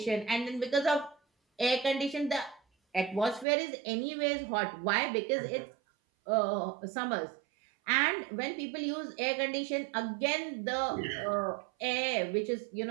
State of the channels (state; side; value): drops out; left; at 3.5 s